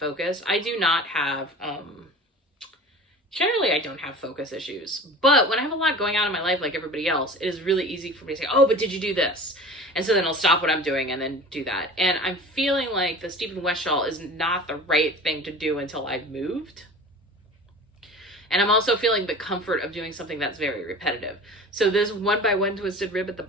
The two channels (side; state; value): both; normal; correlation 0.38